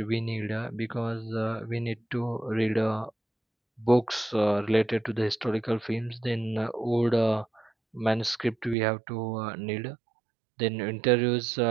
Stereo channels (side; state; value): left; drops out; at 8.8 s